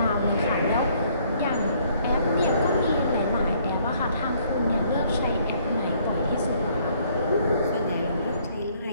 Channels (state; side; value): inverted; both; correlation -0.64